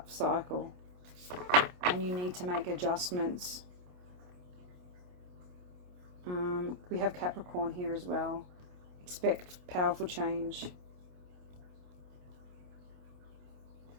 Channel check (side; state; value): left; late; 28 ms